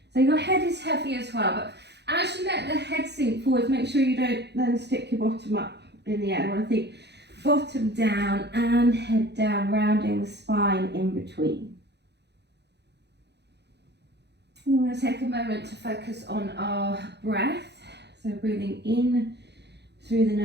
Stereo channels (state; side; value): late; left; 0.49 ms